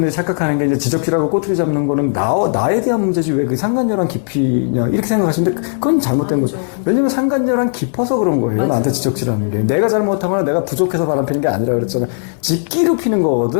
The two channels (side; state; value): right; silent; 62 dB below the other